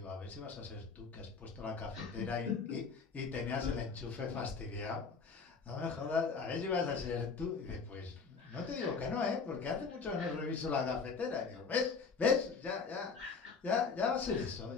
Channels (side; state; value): right; quieter; 5.1 dB